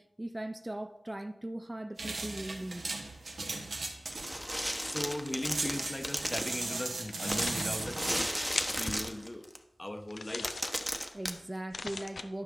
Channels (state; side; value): normal; both; correlation 0.97